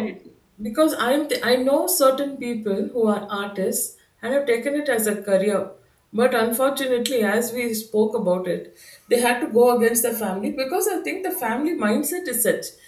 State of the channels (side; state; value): both; identical; correlation 1.00